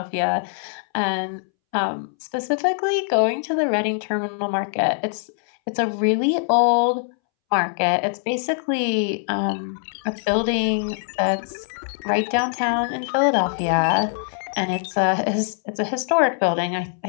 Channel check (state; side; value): silent; right; 64 dB below the other